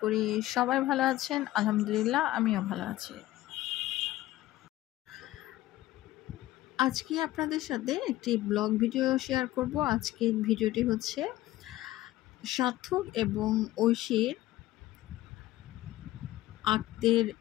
করি সবাই ভালো আছেন। আলহামদুলিল্লাহ, আমিও ভালো আছি। আজকে আপনাদের সাথে একটি ব্লগ ভিডিও শেয়ার করব। আজকের ভিডিওটি হচ্ছে সার্থক এবং ঐশীর আক্তের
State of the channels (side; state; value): right; quieter; 15.9 dB